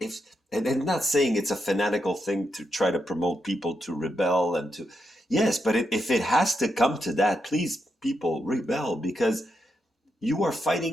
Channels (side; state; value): both; normal; correlation 0.83